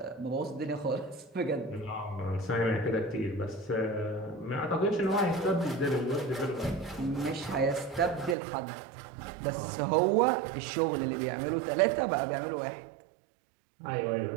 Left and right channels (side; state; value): left; drops out; at 8.3 s